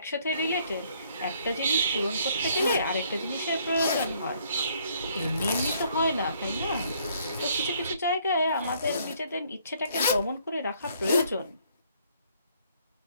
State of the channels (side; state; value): both; inverted; correlation -0.65